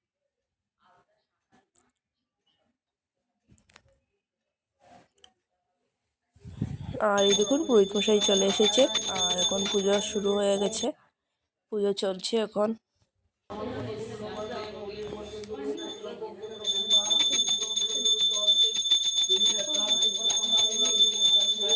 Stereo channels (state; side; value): identical; both; correlation 1.00